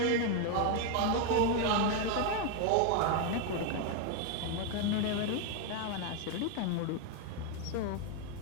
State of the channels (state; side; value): different; both; correlation 0.01